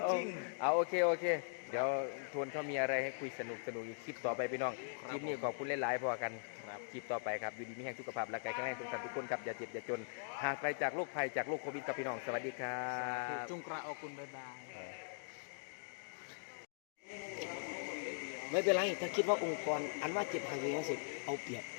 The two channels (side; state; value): right; silent; digital silence